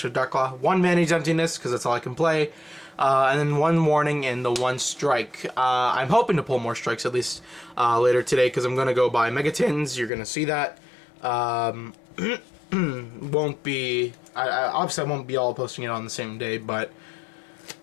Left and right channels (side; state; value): right; drops out; at 10.1 s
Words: Darklaw. 1 Manage Emptiness, because that's all I can play. And then 1 Warning and the 1 Strike. I'm hoping to pull more strikes at least later today because I'm going to go buy Megatins. You're going to see that. Won't be... obviously, I won't be all posting it on the same day, but